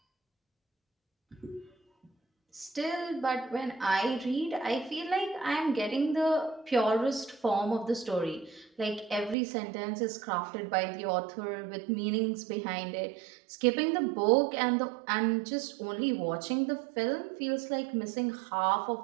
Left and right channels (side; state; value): left; drops out; at 9.3 s